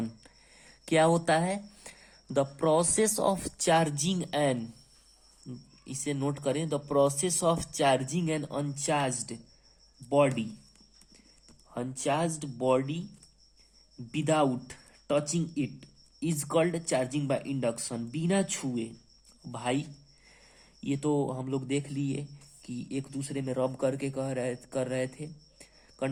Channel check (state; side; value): identical; both; correlation 1.00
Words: क्या होता है, the process of charging an, इसे नोट करें, the process of charging an uncharged body without touching it is called charging by induction. बिना छुए, भाई ये तो हम लोग देख लिए कि एक दूसरे में रब करके कर रहे थे,